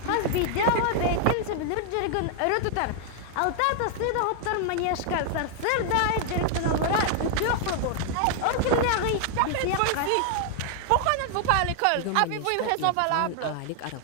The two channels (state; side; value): different; both; correlation 0.00